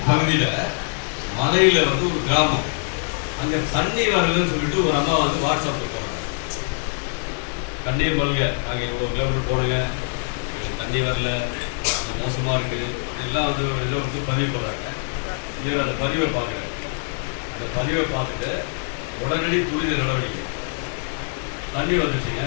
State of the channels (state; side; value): silent; right; 58 dB below the other